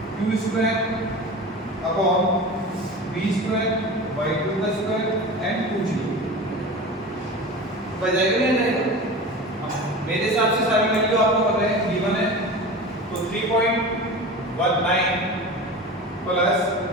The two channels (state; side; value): normal; both; correlation 0.32